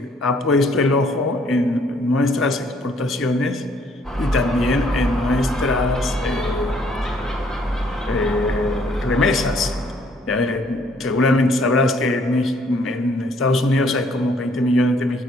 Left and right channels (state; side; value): normal; both; correlation 0.64